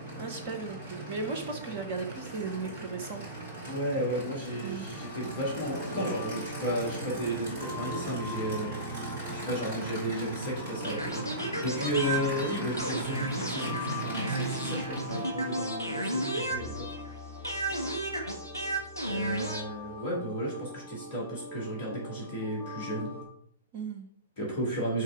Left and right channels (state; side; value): inverted; both; correlation -0.31